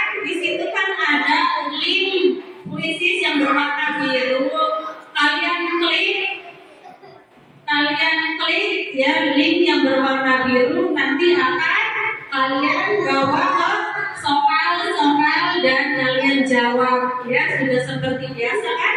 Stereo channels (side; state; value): both; identical; correlation 1.00